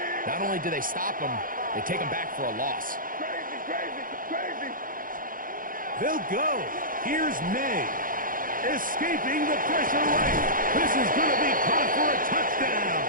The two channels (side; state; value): left; late; 0.40 ms